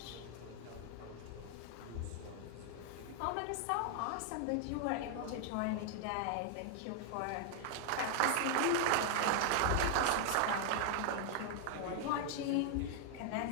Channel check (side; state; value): both; different; correlation 0.00